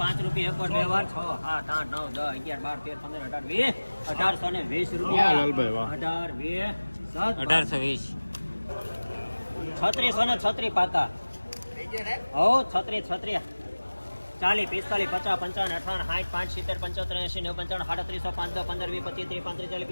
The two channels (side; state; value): both; inverted; correlation -1.00